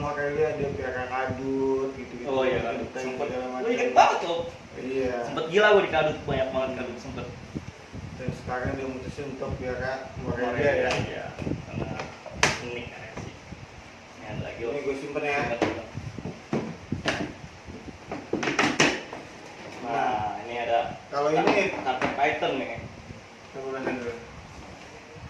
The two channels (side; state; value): both; identical; correlation 1.00